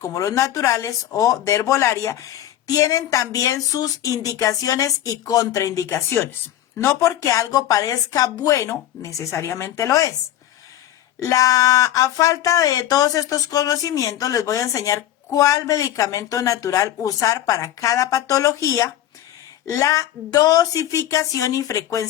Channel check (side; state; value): right; quieter; 12.4 dB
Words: los naturales o de herbolaria tienen también sus indicaciones y contraindicaciones. No porque algo parezca bueno, necesariamente lo es. A falta de todos estos conocimientos, les voy a enseñar cuál medicamento natural usar para cada patología, la dosificación y